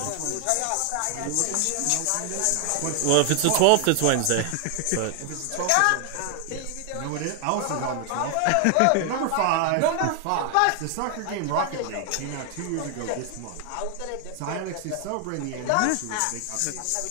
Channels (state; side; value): different; both; correlation 0.00